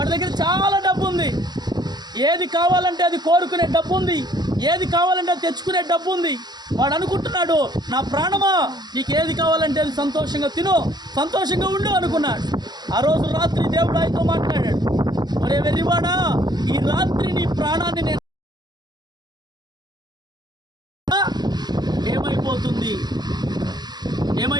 దగ్గర చాలా డబ్బు ఉంది, ఏది కావాలంటే అది కోరుకునే డబ్బు ఉంది, ఏది కావాలంటే అది తెచ్చుకునే డబ్బు ఉంది. వాడు అనుకుంటున్నాడు, నా ప్రాణమా నీకు ఏది కావాలంటే అది సంతోషంగా తిను, సంతోషంగా ఉండు అనుకున్నాడు. ఆ రోజు రాత్రి దేవుడు ఆయనతో మాట్లాడాడు, ఒరే వెర్రివాడా, ఈ రాత్రి నీ ప్రాణాన్ని నేను ఏమైపోతుంది.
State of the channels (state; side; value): late; left; 0.20 ms